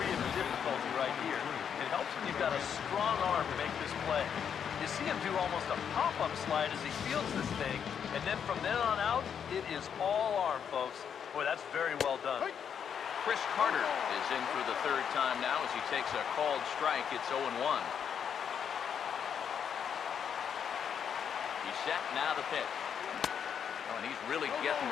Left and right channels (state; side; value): quieter; right; 7.8 dB